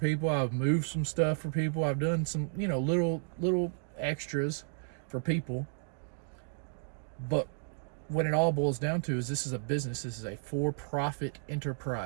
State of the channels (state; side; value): silent; left; digital silence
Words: I've moved some stuff for people. I've done some, little extras for people. But when it all boils down to is, this is a business. This is a for-profit